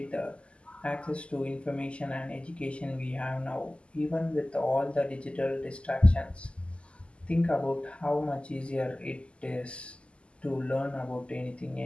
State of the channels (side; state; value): right; late; 0.054 ms